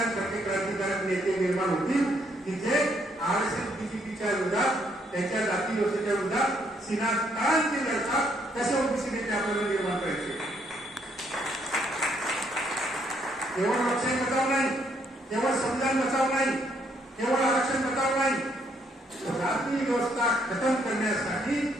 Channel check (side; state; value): both; normal; correlation 0.71